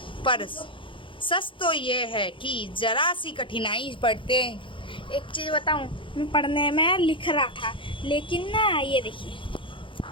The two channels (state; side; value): late; right; 0.25 ms